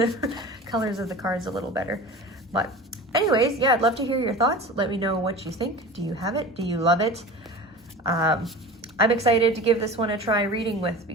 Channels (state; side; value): normal; both; correlation 0.35